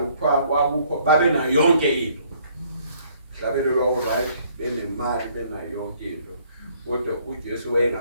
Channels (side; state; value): both; inverted; correlation -0.63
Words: kwakukho babe nayo yonke into mhlabeni lwabo right benemali benayo yonke into kodwa uJesu